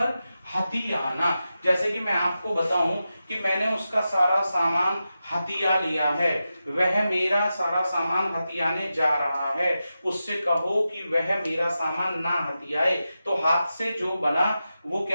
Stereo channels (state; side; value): inverted; both; correlation -0.91